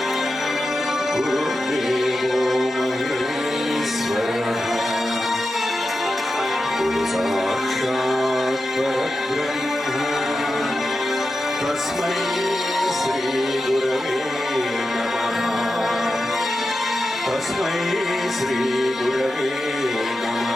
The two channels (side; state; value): both; normal; correlation 0.91